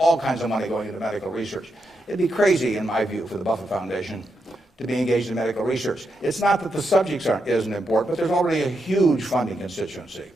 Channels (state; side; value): normal; both; correlation 0.84